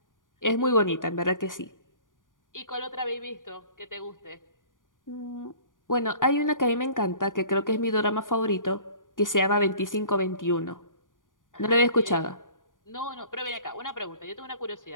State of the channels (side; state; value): right; late; 0.88 ms